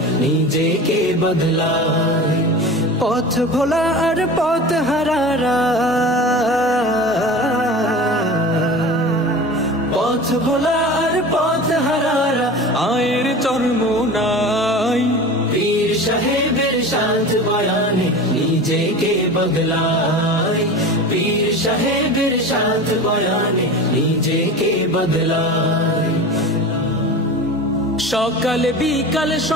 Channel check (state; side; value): normal; both; correlation 0.33